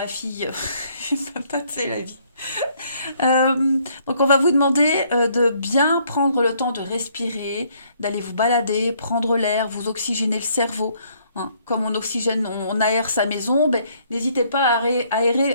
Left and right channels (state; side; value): inverted; both; correlation -0.66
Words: fille. Les patates, c'est la vie. Donc on va vous demander de bien prendre le temps de respirer, d'aller vous balader, prendre l'air, vous oxygéner le cerveau, hein. Comme on oxygène, on aère sa maison, ben, n'hésitez pas à